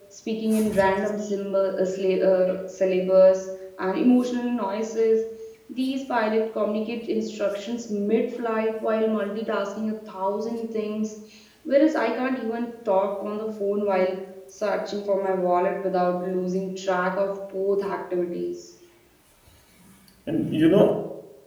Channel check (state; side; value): identical; both; correlation 1.00